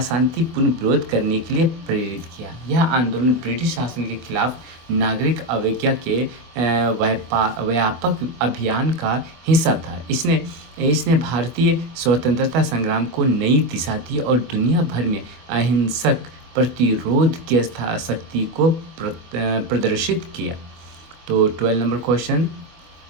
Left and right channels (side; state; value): left; late; 24 ms